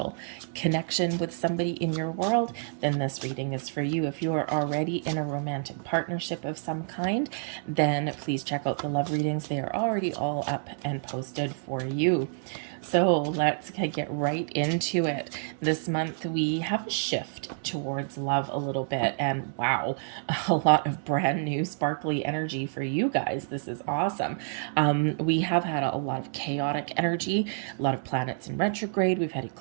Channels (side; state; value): left; silent; 59 dB below the other